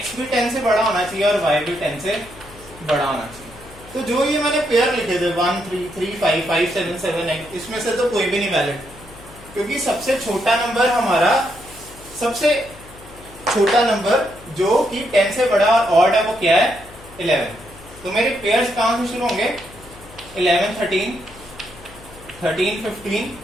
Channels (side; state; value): left; noise; hum, 20 dB below the sound